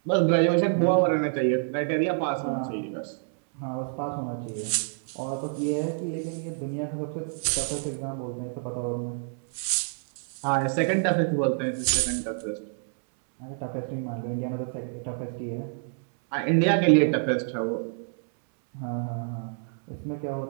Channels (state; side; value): silent; left; 60 dB below the other